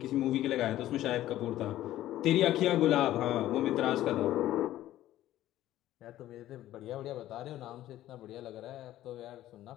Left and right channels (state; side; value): quieter; right; 13.9 dB